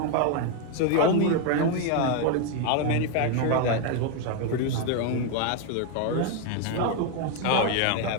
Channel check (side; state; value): both; different; correlation 0.01